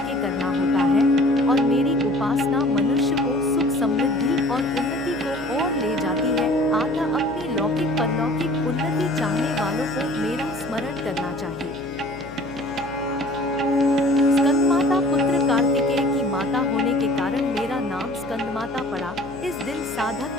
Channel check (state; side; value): noise; left; hum, 15 dB below the sound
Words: करना होता है। और मेरी उपासना मनुष्य को सुख, समृद्धि और उन्नति को ओर ले जाती है। अतः अपनी लौकिक परलौकिक उन्नति चाहने वालों को मेरा स्मरण करना चाहिए। स्कंदमाता पुत्र कार्तिकेय की माता होने के कारण मेरा नाम स्कंदमाता पड़ा। इस दिन